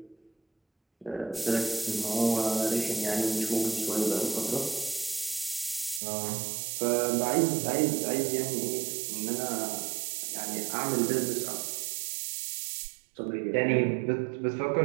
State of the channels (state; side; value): drops out; left; at 6.0 s